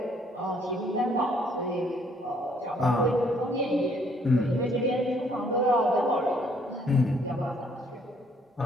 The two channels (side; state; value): both; normal; correlation 0.65